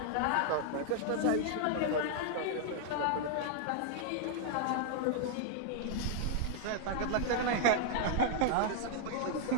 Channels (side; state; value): both; different; correlation -0.01